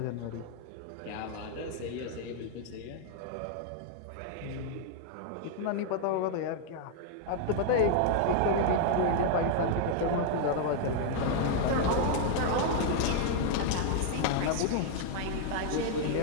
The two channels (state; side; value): different; both; correlation -0.01